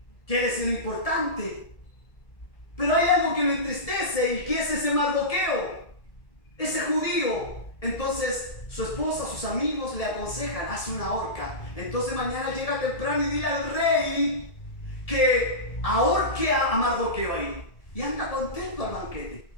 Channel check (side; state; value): right; late; 1.7 ms